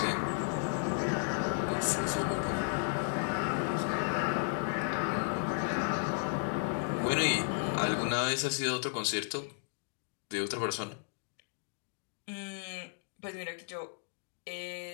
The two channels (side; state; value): right; silent; digital silence